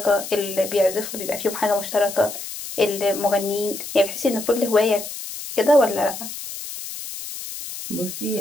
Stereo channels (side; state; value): left; noise; hiss, 9 dB below the sound